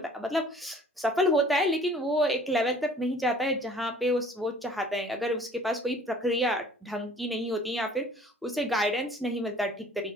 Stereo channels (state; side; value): normal; both; correlation 0.52